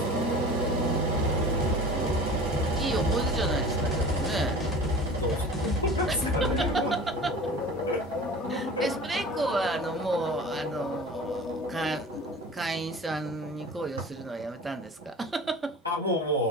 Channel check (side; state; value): both; normal; correlation 0.38